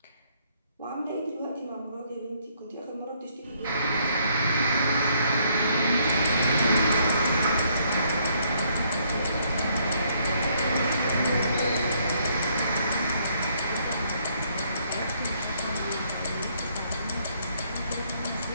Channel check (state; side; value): inverted; both; correlation -0.69